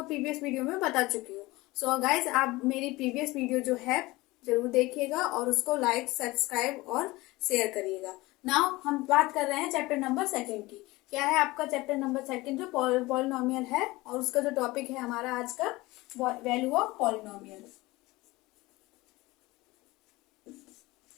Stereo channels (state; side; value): quieter; right; 20.7 dB